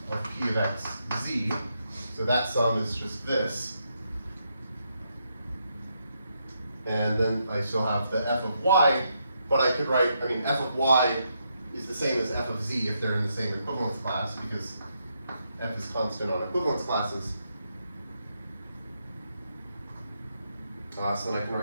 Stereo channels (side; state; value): both; inverted; correlation -0.79